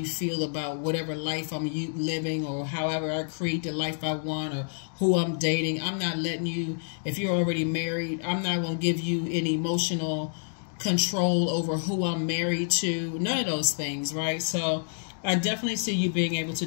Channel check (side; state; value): right; silent; digital silence